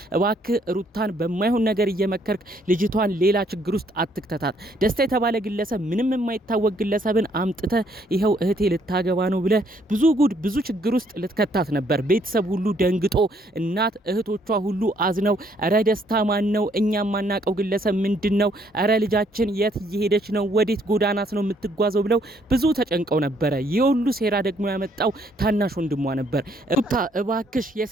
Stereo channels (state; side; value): normal; both; correlation 0.68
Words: እባክህ ሩታን በማይሆን ነገር እየመከርክ ልጅቷን ሌላ ችግር ውስጥ አትክተታት። ደስታ የተባለ ግለሰብ ምንም የማይታወቅ ግለሰብን አምጥተ ይኸው እህቴ ልታገባ ነው ብለ ብዙ ጉድ ብዙ ችግር ውስጥ ልትከታት ነበር። ቤተሰብ ሁሉ ደንግጦ እናት እህቶቿ ሁሉ አዝነው እረ ደስታ ማን ነው? እኛም ማናቀው ግለሰብ ምንድነው? እረ ልጃችን የት እየሄደች ነው? ወዴት ጎዳናት ነው የምትጓዘው? ብለው ብዙ ተጨንቀው ነበረ። የሁሉ ሴራ ደግሞ ያመጣው ታናሽ ወንድሟ ነበር። ሩታ እባክሽ